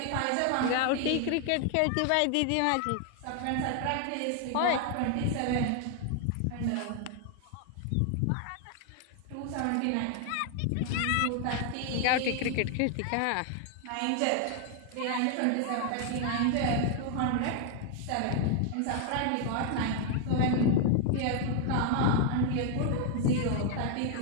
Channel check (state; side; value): different; both; correlation 0.00